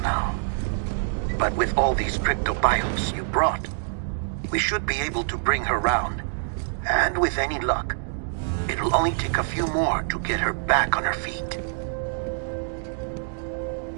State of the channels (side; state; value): left; silent; digital silence